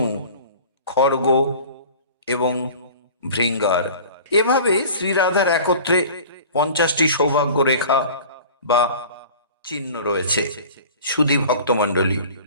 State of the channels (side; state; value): both; inverted; correlation -0.42